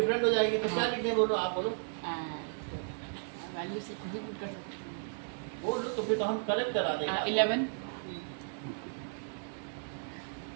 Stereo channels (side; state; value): left; silent; digital silence